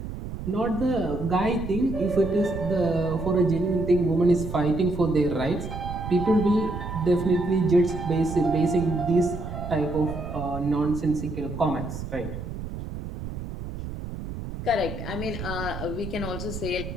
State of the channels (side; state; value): right; noise; rumble, 8 dB below the sound